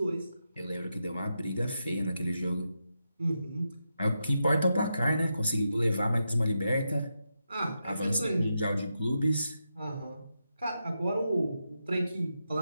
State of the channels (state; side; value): inverted; both; correlation -0.86